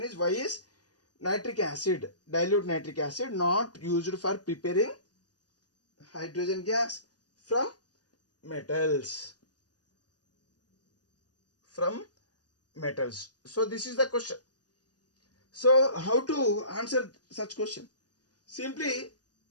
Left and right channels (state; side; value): late; right; 0.68 ms